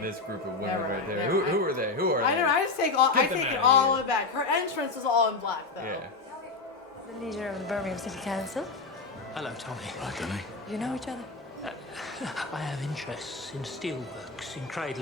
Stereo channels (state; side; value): quieter; right; 3.9 dB